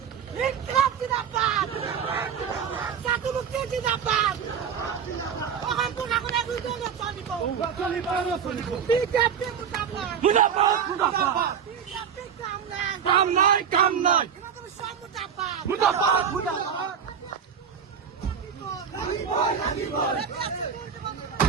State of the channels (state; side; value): quieter; left; 7.5 dB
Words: কাম নাই কাম নাই